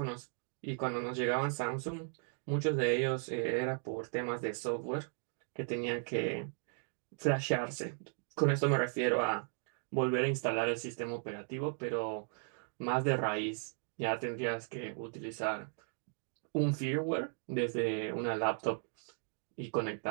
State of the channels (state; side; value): silent; left; 54 dB below the other